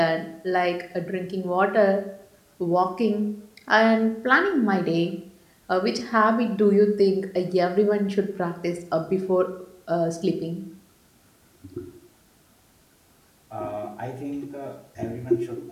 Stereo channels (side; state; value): both; identical; correlation 1.00